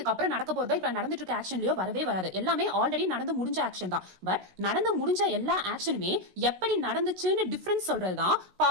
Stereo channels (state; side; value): late; left; 16 ms